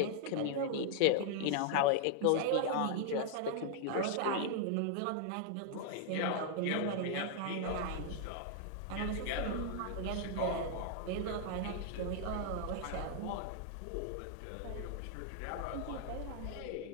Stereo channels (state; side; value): different; both; correlation -0.01